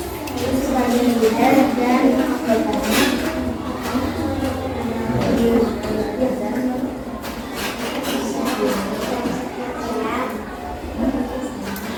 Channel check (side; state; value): both; identical; correlation 1.00